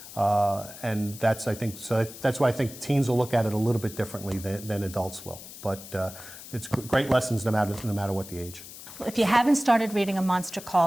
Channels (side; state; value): left; noise; hiss, 15 dB below the sound